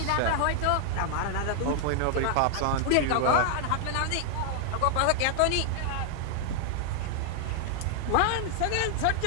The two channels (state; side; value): different; both; correlation 0.00